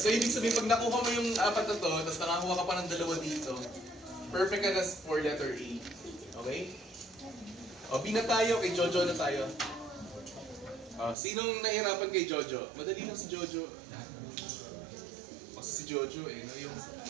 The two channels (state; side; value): drops out; left; at 11.2 s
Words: ibig sabihin, pag nakuha mo yung 4 na to, tapos nakakuha ka pa ng 2 dito, perfect ka na for letter A. Okay? O, B na tayo, kay Jojo na tayo. Sinong nahirapan kay Jojo? Madali lang si Jojo. Kasi si Jojo no?